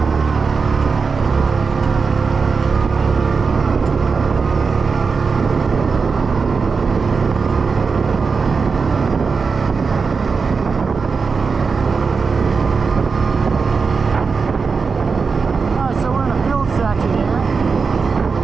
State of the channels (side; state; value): left; quieter; 5.0 dB